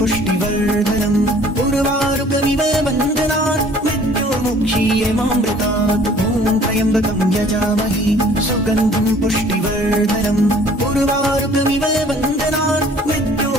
उर्वारुकमिव बन्धनात् मुक्षीयमामृतात् ॐ त्र्यम्बकं यजामहे सुगन्धिं पुष्टिवर्धनम् उर्वारुकमिव बन्धनात्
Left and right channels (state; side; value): normal; both; correlation 0.53